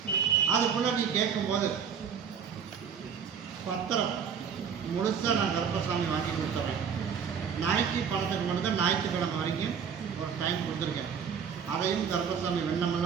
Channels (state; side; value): quieter; left; 7.2 dB